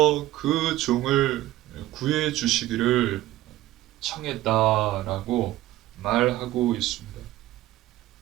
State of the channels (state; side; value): quieter; left; 15.9 dB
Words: 그 종을 구해 주시기를 청했다라고 말하고 있습니다.